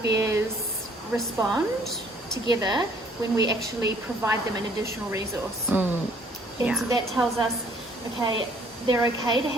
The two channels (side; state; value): both; normal; correlation 0.60